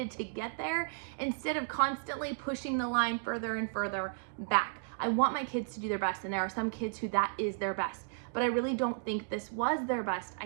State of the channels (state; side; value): silent; left; digital silence